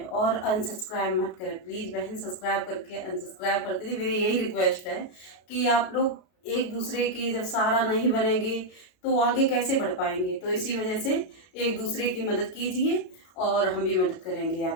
और अनसब्सक्राइब मत करें प्लीज़ बहन, सब्सक्राइब करके अनसब्सक्राइब कर दीजिए। मेरी यही रिक्वेस्ट है कि आप लोग एक दूसरे की जब सहारा नहीं बनेंगे तो आगे कैसे बढ़ पाएंगे। तो इसी वजह से एक दूसरे की मदद कीजिए और हम भी मदद करेंगे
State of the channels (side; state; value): right; late; 33 ms